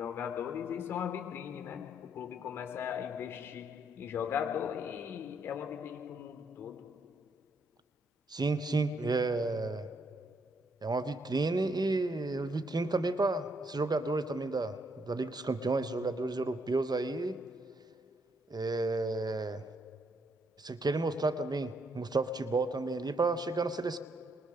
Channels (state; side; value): normal; both; correlation 0.73